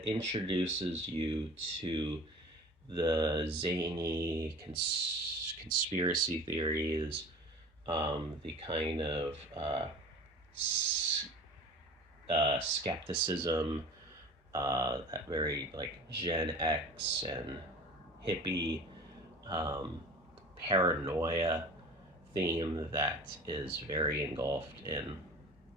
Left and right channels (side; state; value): both; normal; correlation 0.40